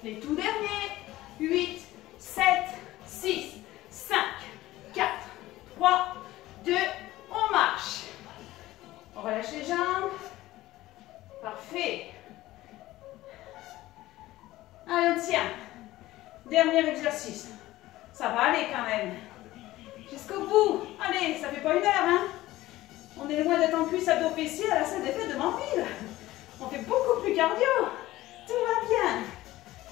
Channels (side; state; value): right; quieter; 16.6 dB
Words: Les tout derniers. 8, 7, 6, 5, 4, 3, 2, on marche. On relâche les jambes. Parfait. Allez, on tient. Dernier exercice. Ça va aller quand même. Jusqu'au bout. Allez, ça fait pas 1 heure, hein. On est loin d'être en cuisse abdos fessiers à la salle des fêtes de Manville. On fait beaucoup plus cardio. Tout va bien.